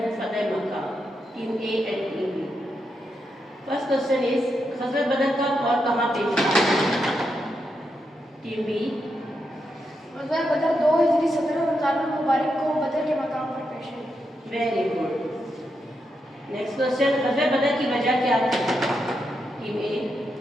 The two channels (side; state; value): both; normal; correlation 0.84